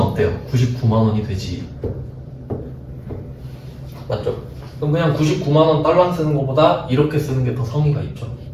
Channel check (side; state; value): both; identical; correlation 1.00